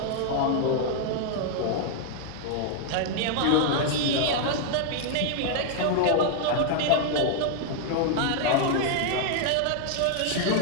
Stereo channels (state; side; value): different; both; correlation 0.00